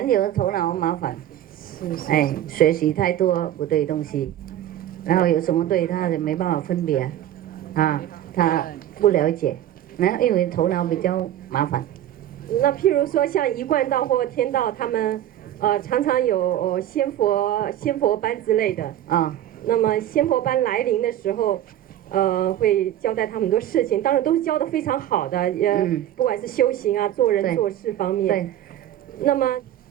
有头脑麻烦，学习太多不对东西，然后有什么对他也没办法分别，他不了解，然后因为头脑比较麻烦。那譬如说像一贯道或天道，他们常常有仙佛班之类的那么仙佛班来临的时候。会交代他们很多事情，当然都是教的非常好的，不管是修行啊、做人做事方面。对。那么，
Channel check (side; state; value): left; quieter; 12.0 dB